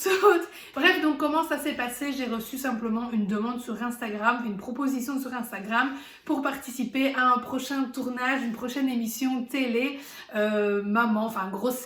Bref, donc comment ça s'est passé? J'ai reçu simplement une demande sur Instagram, une proposition sur Instagram pour participer à un prochain tournage, une prochaine émission télé, maman, enfin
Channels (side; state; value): both; identical; correlation 1.00